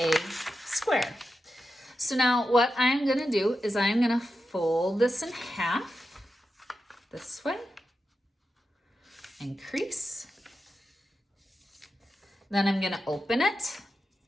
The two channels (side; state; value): both; normal; correlation 0.90